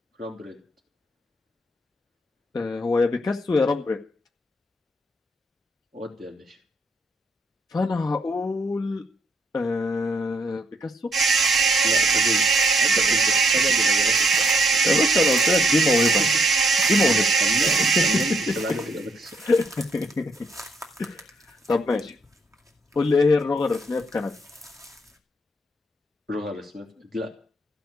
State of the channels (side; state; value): both; normal; correlation 0.71